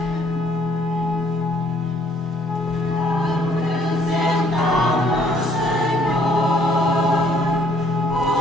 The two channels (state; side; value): normal; both; correlation 0.64